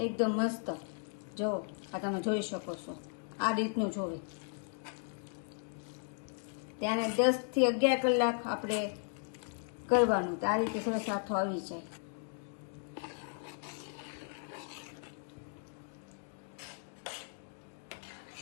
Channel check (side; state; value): right; silent; 54 dB below the other